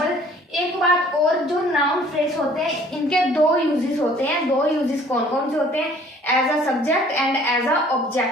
एक बात और, जो नाउन फ्रेज होते हैं इनके 2 यूजेस होते हैं। 2 यूजेस कौन कौन से होते हैं, as a subject and as a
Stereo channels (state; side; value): normal; both; correlation 0.55